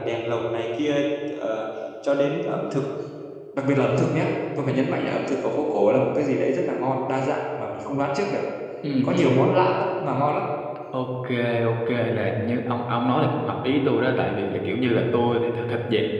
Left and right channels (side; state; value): both; identical; correlation 1.00